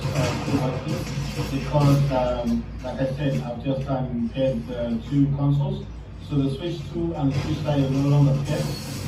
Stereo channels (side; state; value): both; identical; correlation 1.00